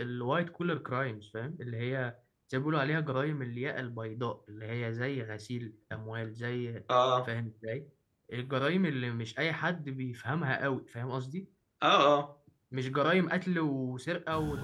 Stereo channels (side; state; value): both; identical; correlation 1.00